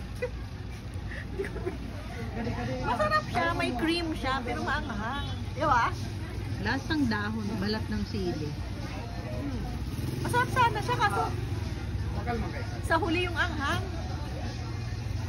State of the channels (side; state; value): both; identical; correlation 1.00